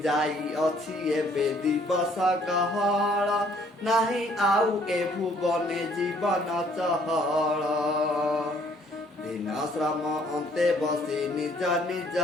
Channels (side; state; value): both; normal; correlation 0.62